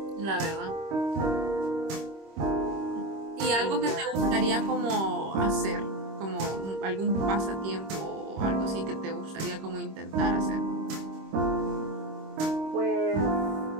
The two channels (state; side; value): late; left; 26 ms